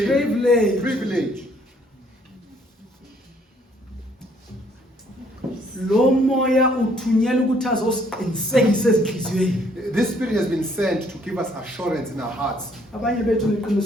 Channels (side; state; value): both; normal; correlation 0.65